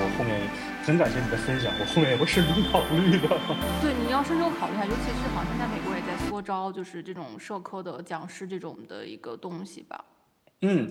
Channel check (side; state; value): both; identical; correlation 1.00